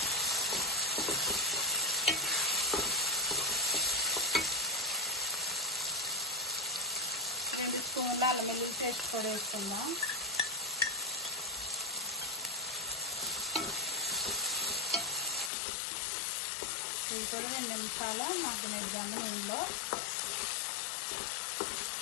రెండు స్పూన్ల అల్లం వెల్లుల్లి పేస్ట్ కూడా వేసుకుందాం. కూడా 2 నిమిషాలు మగ్గనిద్దాము నూనెలో.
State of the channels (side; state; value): right; drops out; at 15.5 s